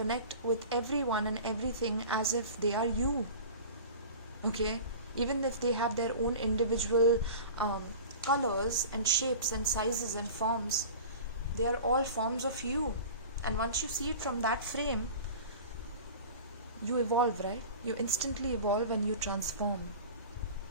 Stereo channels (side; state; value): both; inverted; correlation -0.37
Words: with everyone and everything as if they are you, okay? Even if they have their own individual colors and shapes and sizes and forms, they are all forms of you. And once you see it from that frame, you evolve, right? You instantly evolve and you transform,